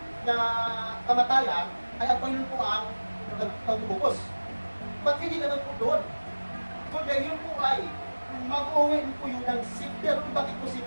na kamatayan ay ang Panginoon po ang pagtubos. Ba't hindi naman po doon? Kundi yun po ay mag-uwi po yun ng safety. Pero bakit po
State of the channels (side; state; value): both; inverted; correlation -1.00